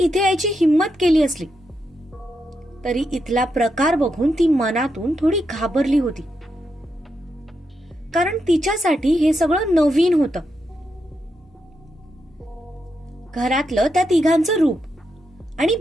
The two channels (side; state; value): both; normal; correlation 0.84